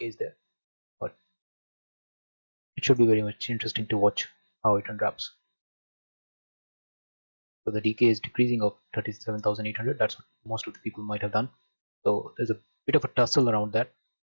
is there, but it should be very much interesting to watch how it unwraps. So the decay is decreasing of 37,800. That's what most of the people might have done. So there's a bit of a tussle around that,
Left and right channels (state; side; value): inverted; both; correlation -1.00